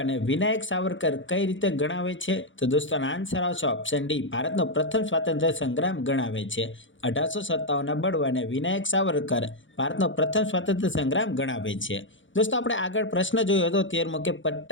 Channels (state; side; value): late; right; 0.56 ms